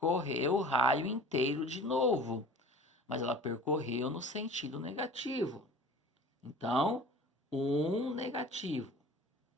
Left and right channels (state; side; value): normal; both; correlation 0.42